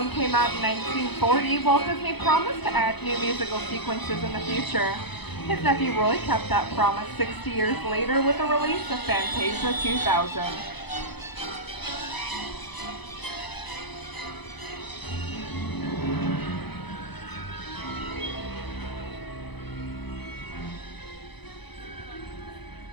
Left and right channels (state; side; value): late; right; 0.99 ms